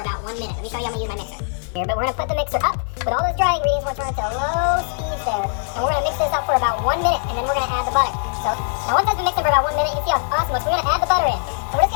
about 1 minute. Let me show you how I'm going to use my mixer. Here, but we're going to put the mixer up with all those dry ingredients. We're going to turn it to low speed there. And we're going to mix this up for about 1 minute, and then we're going to add the butter. So now once it's been mixing for about 1 minute, you can see how awesome it looks. We're going to add the butter in. And we're just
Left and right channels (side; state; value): right; silent; digital silence